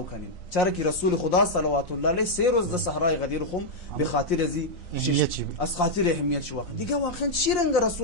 کنین، چرا که رسول خدا صلوات الله علیه 3 روز در صحرای غدیر خم به خاطر از خاطر اهمیت شو. واقعا دیگه واقعا چی رنگ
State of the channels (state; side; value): late; right; 3.9 ms